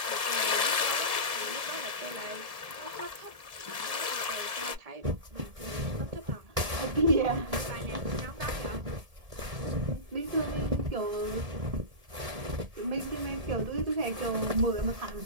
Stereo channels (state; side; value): late; left; 1.7 ms